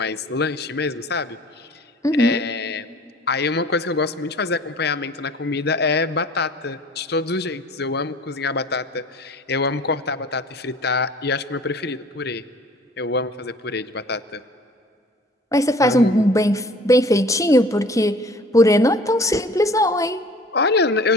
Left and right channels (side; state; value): both; normal; correlation 0.48